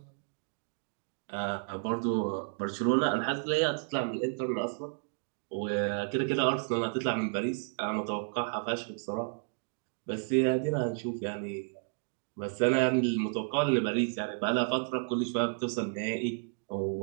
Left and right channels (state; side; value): silent; left; digital silence